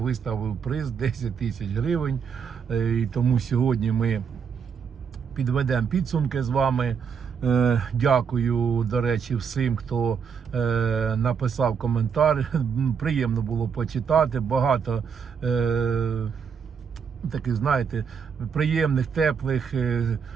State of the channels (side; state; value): left; quieter; 6.6 dB